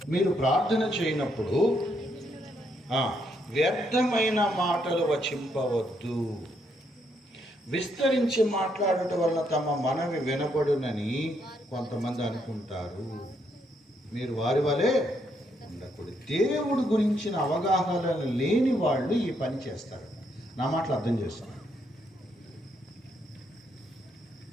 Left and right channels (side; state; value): both; normal; correlation 0.75